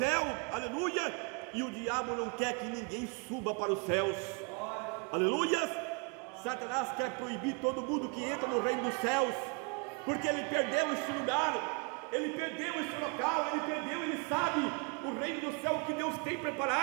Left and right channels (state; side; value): quieter; left; 33.2 dB